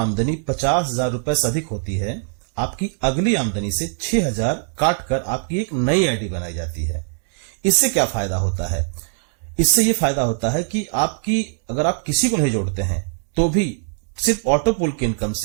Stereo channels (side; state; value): left; silent; digital silence